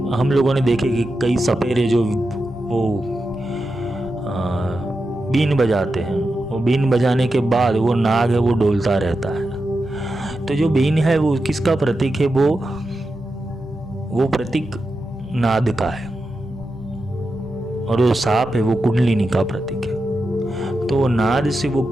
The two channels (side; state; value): both; normal; correlation 0.89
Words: हम लोगों ने देखे कि कई सपेरे जो वो बीन बजाते हैं, वो बीन बजाने के बाद वो नाग है वो डोलता रहता है। तो जो बीन है वो किसका प्रतीक है? वो प्रतीक नाद का है, और वो सांप है वो कुंडलिनी का प्रतीक है। तो वो नाद से वो